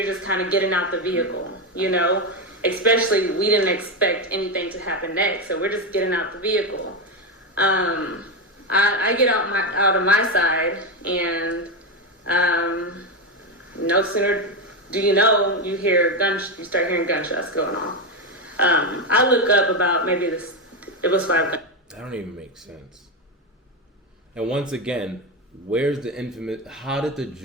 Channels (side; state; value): both; normal; correlation 0.12